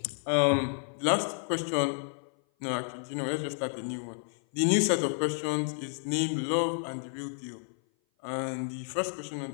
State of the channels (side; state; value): right; silent; 56 dB below the other